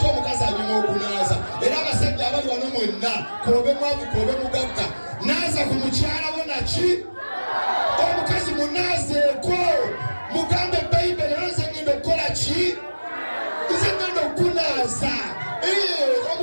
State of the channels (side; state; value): both; inverted; correlation -1.00